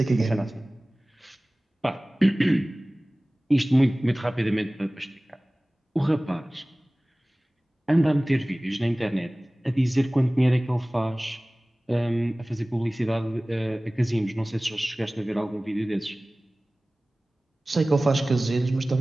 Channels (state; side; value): normal; both; correlation 0.98